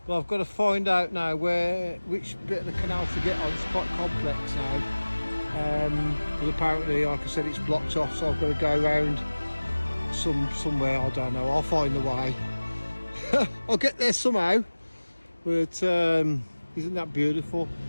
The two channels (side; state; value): both; inverted; correlation -1.00